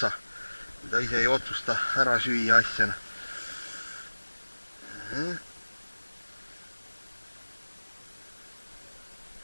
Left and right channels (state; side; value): inverted; both; correlation -1.00